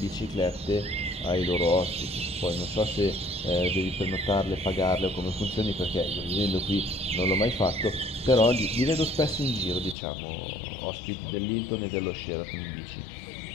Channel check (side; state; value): right; drops out; at 10.0 s